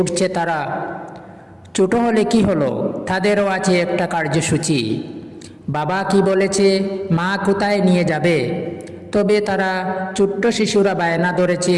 তারা। ছোট হলে কি হলো, তাদেরও আছে একটা কার্যসূচি। বাবা কি বলেছে, মা কোথায় নিয়ে যাবে, তবে তারা ছোট্ট শিশুরা বায়না ধরেছে,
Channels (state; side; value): identical; both; correlation 1.00